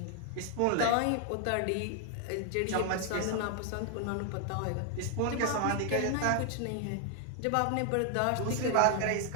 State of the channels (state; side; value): different; both; correlation 0.00